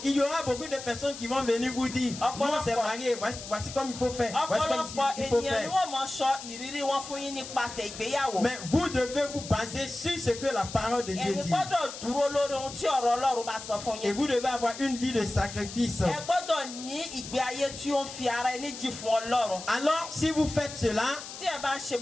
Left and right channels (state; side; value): noise; left; hiss, 11 dB below the sound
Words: Il y aura beaucoup de personnes qui vont venir vous dire non, c'est marié, voici comme il faut faire. Voici comme il faut faire. Mais vous devez vous baser sur ce que la parole de Dieu dit. Et vous devez avoir une vie de sacrifice. Alors, si vous faites cela,